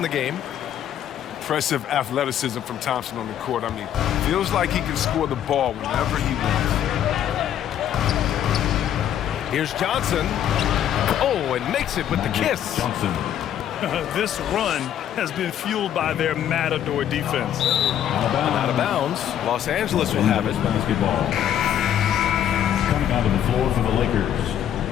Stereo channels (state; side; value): quieter; right; 10.4 dB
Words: the game. Impressive athleticism from Thompson on the court. I mean, feels like he can score the ball whenever he wants. Here's Johnson. Oh, and makes it with the kiss. Johnson. This run has been fueled by their Matador defense. Out of bounds. Los Angeles will have it. Basketball. Coming onto the floor for the Lakers.